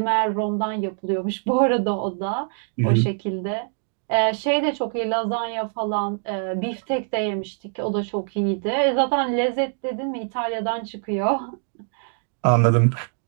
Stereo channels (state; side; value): silent; left; digital silence